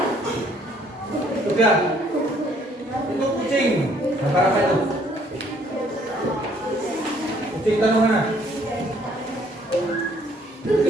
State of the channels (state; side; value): normal; both; correlation 0.63